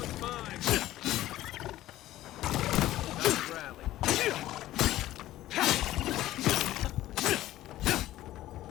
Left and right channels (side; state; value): right; quieter; 14.8 dB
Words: mine. Nice rally.